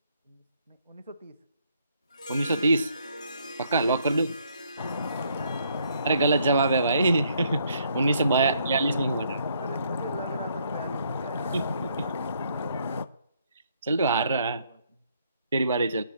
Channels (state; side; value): inverted; both; correlation -0.70